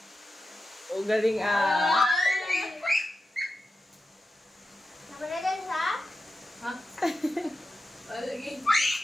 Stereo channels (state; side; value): normal; both; correlation 0.91